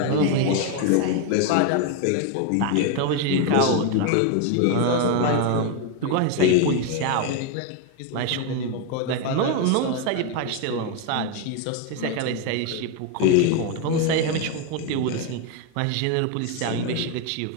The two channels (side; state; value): both; different; correlation 0.01